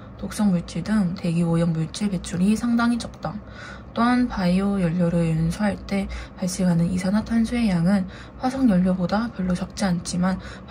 독성물질 등 대기 오염 물질 배출이 상당히 적다. 또한 바이오 연료를 연소할 때 발생하는 이산화탄소의 양은 화석 연료보다 별로 적지 않지만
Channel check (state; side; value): identical; both; correlation 1.00